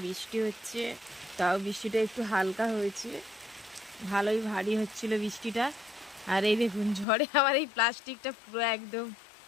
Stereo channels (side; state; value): right; drops out; at 7.1 s